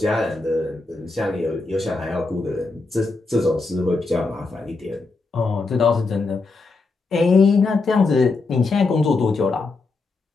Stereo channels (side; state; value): right; quieter; 3.7 dB